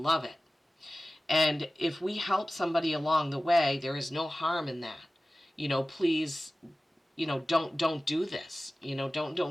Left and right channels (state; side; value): normal; both; correlation 0.96